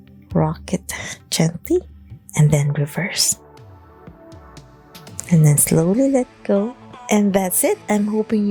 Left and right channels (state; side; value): identical; both; correlation 1.00